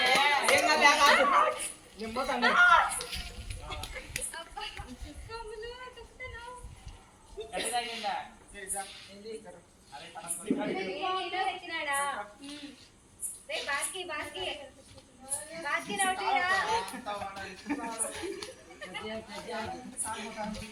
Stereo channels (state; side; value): identical; both; correlation 1.00